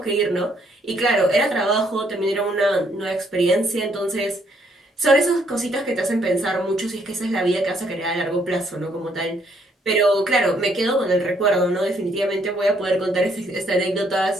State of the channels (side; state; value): both; normal; correlation 0.69